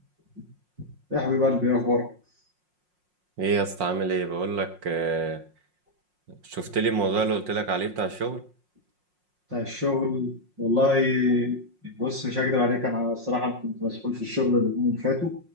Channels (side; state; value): left; late; 5.6 ms